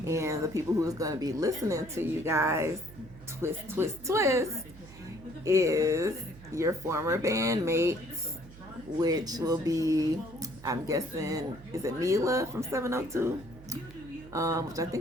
And the people who's going to be listening to you guys, twist, is your former bandmates, which will be, I'm guessing, is it Mila from 702? Which I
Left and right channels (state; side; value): noise; right; hum, 19 dB below the sound